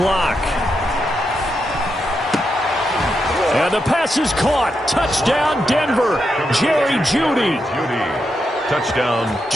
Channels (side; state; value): both; normal; correlation 0.84